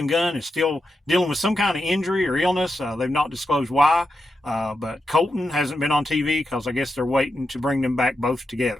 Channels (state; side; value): normal; both; correlation 0.87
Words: Gunn is still dealing with some kind of injury or illness. They've not disclosed why, but Colton hasn't been on TV because I guess they're waiting to bring them back both